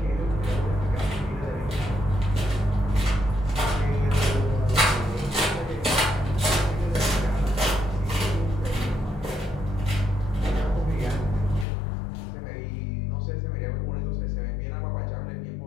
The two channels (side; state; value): right; drops out; at 11.7 s